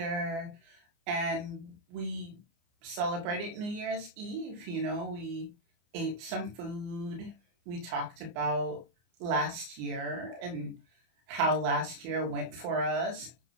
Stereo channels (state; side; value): late; left; 24 ms